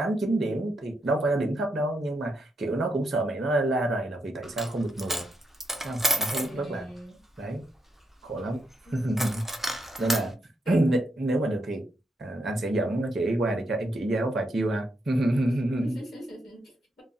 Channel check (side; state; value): both; normal; correlation 0.79